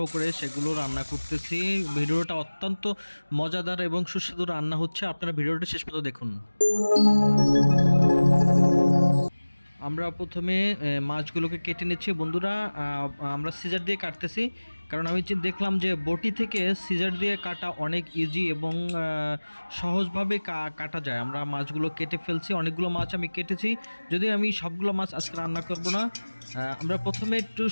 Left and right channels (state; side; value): inverted; both; correlation -1.00